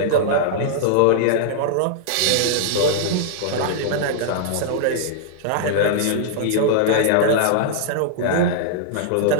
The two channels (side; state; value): both; different; correlation -0.01